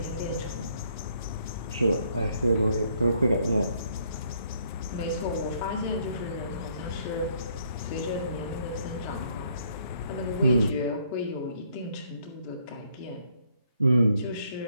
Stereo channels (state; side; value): inverted; both; correlation -0.68